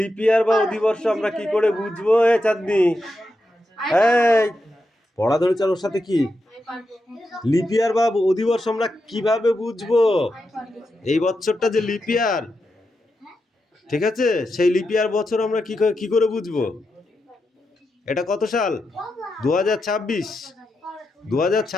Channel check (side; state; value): both; normal; correlation 0.87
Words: লিপ ইয়ার বা অধিবর্ষ আমরা কি করে বুঝবো? এ চাঁদনি, এই পড়া ধরে চার ওর সাথে কি লিপ ইয়ার বা অধিবর্ষ আমরা কিভাবে বুঝবো? এই বছরটা যে লিপ ইয়ার, ঠিক আছে, সেই লিপ ইয়ার বছর আমরা কি করে বুঝবো? এটা কত সাল? 2026।